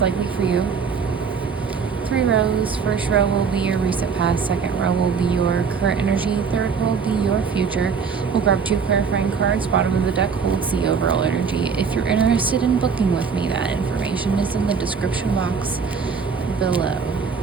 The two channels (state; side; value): quieter; left; 5.8 dB